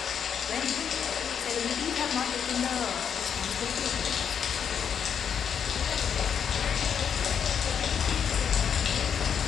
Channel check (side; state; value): right; quieter; 7.7 dB